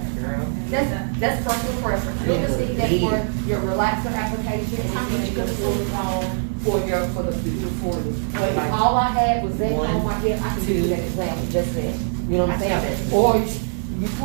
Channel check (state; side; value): silent; left; digital silence